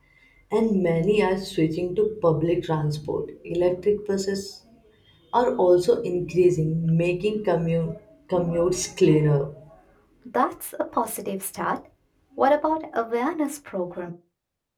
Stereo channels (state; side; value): identical; both; correlation 1.00